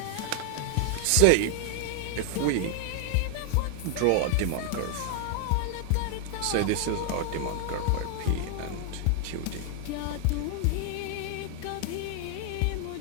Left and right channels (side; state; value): both; different; correlation 0.00